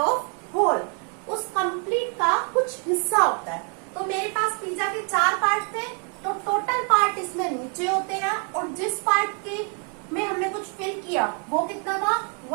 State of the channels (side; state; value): left; quieter; 39.9 dB